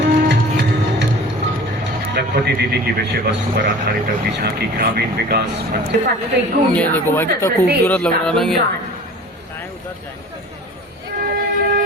लखपति दीदी की विषय वस्तु पर आधारित अगली झांकी ग्रामीण विकास मंत्री। ये देखो भाई कितना खूबसूरत लग रहा है ना ये।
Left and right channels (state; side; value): normal; both; correlation 0.42